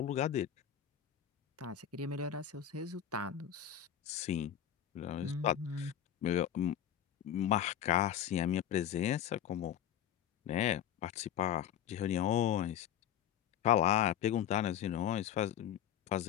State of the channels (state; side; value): quieter; right; 10.1 dB